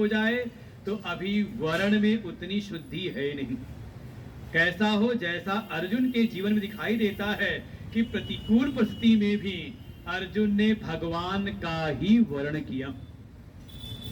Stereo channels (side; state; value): both; identical; correlation 1.00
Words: जाए, तो अभी वर्ण में उतनी शुद्धि है नहीं। कैसा हो, जैसा अर्जुन के जीवन में दिखाई देता है कि प्रतिकूल परिस्थिति में भी अर्जुन ने भगवान का ही वर्ण किया।